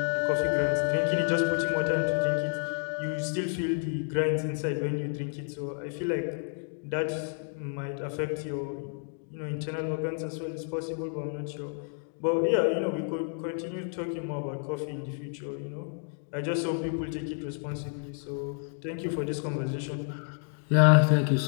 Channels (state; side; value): silent; right; 58 dB below the other